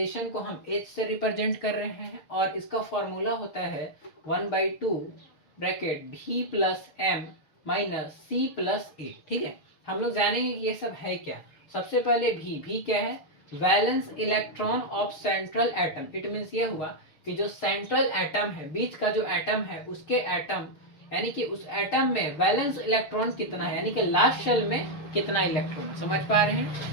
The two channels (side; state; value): right; late; 6.7 ms